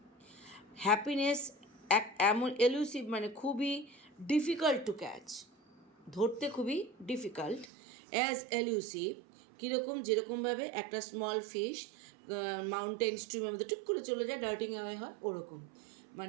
Happiness এমন এলুসিভ মানে খুবই ডিফিকাল্ট টু ক্যাচ, ধরতে খুবই ডিফিকাল্ট, অ্যাজ এলুসিভ কীরকম, যেরকমভাবে একটা স্মল ফিশ মাউন্টেন স্ট্রিমের মধ্যে টুক করে চলে যায়, ডার্টিং অ্যাওয়ে হয়, ওরকম।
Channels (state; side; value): drops out; left; at 7.7 s